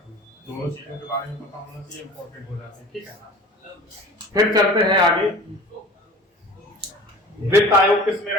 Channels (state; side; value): normal; both; correlation 0.41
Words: में। दोनों चीजों के बारे में पता होना चाहिए, इंपॉर्टेंट हो जाते हैं, ठीक है। फिर चलते हैं आगे। वित्त आयोग किसमें